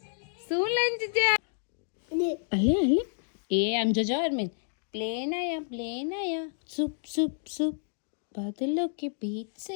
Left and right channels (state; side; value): silent; right; digital silence